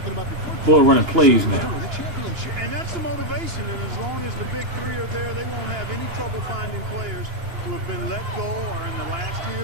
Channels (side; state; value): left; late; 2.9 ms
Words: Boy, running plays now. And that's the motivation. And as long as the big three are there, they won't have any trouble finding players who have been let go or in the last